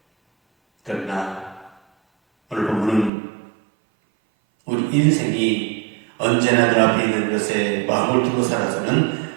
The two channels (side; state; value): left; drops out; at 3.1 s